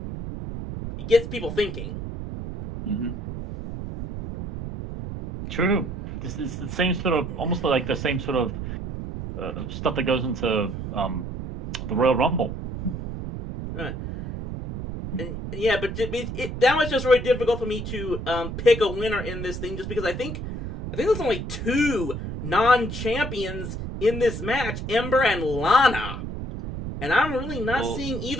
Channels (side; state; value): right; noise; rumble, 6 dB below the sound